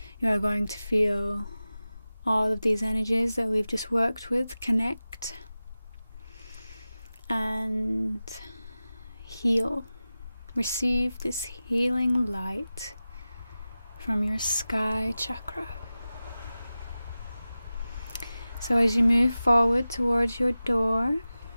you are going to feel all of these energies that we've just worked with connect and heal. Receive this healing light from your sky chakra. So as you move forward towards your door,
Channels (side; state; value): both; inverted; correlation -0.95